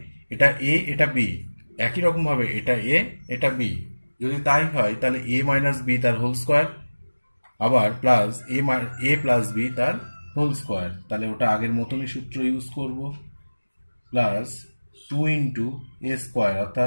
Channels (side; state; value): both; inverted; correlation -1.00